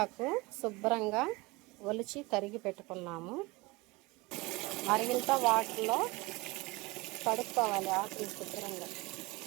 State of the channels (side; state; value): left; quieter; 23.1 dB